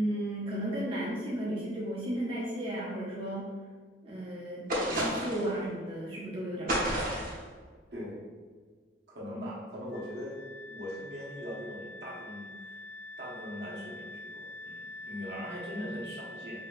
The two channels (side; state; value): both; normal; correlation 0.48